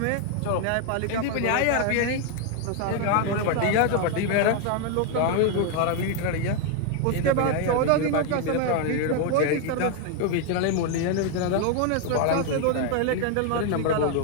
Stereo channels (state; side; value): different; both; correlation 0.00